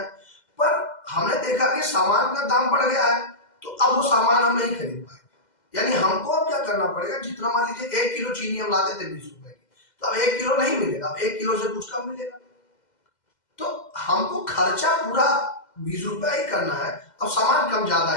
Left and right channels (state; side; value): late; right; 2.0 ms